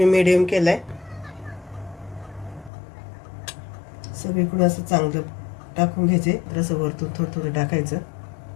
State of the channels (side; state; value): right; drops out; at 2.7 s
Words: मीडियम केलाय. सगळीकडे असं चांगलं टाकून घ्यायचे. असं वरतून थोडं थोडं टाकायचं.